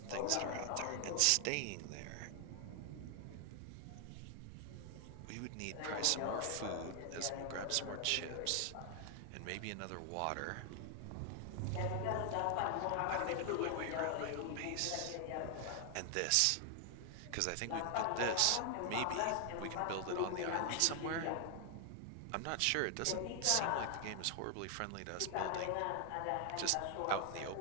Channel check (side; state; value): both; different; correlation 0.00